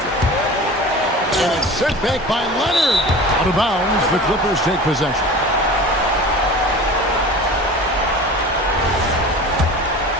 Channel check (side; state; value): both; normal; correlation 0.37